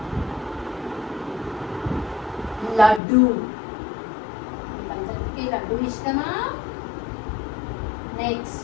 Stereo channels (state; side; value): drops out; right; at 3.0 s